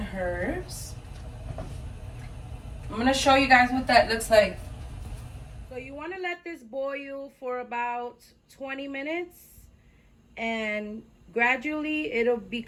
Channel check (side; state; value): both; identical; correlation 1.00